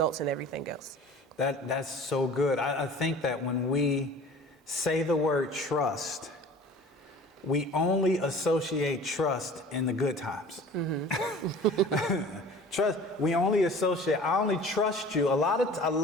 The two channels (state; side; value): normal; both; correlation 0.44